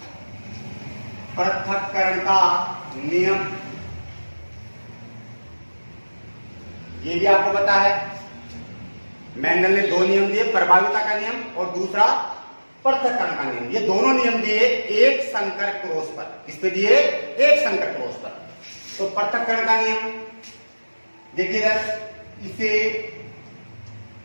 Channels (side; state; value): both; inverted; correlation -1.00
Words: पृथक्करण का नियम ये भी आपको पता है। मेंडल ने दो नियम दिए, प्रभाविता का नियम और दूसरा पृथक्करण का नियम। ये दोनों नियम दिए एक संकर क्रॉस पर। किस पे दिए? एक संकर क्रॉस पर। तो पृथक्करण का नियम देखिएगा, इसे